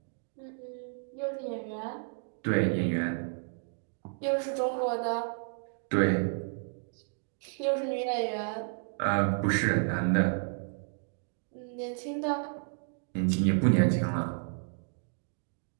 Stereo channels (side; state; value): left; silent; 56 dB below the other